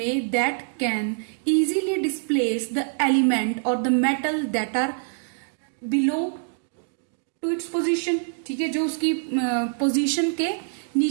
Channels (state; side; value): silent; left; digital silence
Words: that can easily displace the element और the metal that are below to its position, ठीक है, जो उसकी पोजीशन के